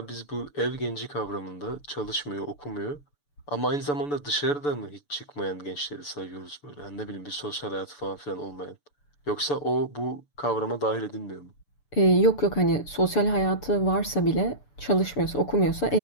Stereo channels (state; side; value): late; right; 6.9 ms